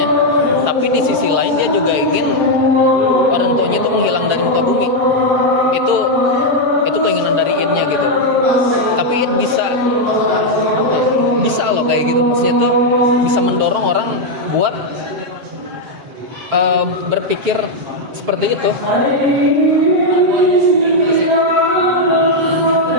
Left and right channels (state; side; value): late; left; 7.5 ms